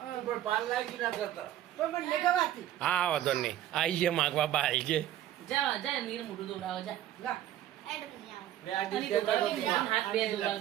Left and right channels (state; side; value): quieter; left; 12.6 dB